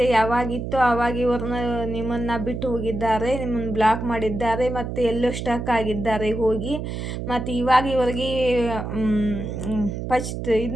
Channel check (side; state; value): right; noise; hum, 5 dB below the sound